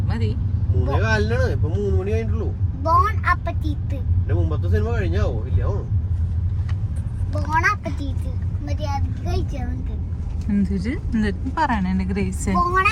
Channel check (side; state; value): both; identical; correlation 1.00